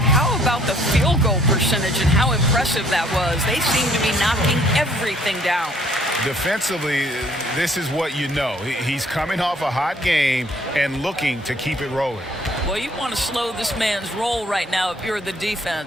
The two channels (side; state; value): both; normal; correlation 0.61